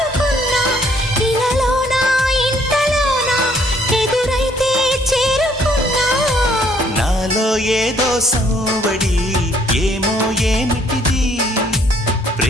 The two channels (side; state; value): both; normal; correlation 0.64